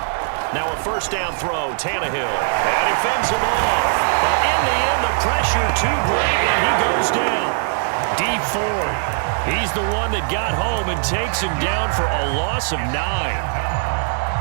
Now a 1st down throw, Tannehill. And he fends him off. But in the end, the pressure too great, and he goes down. Deep Ford. He's the one that got home and takes him down for a loss of 9.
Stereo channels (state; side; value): silent; left; digital silence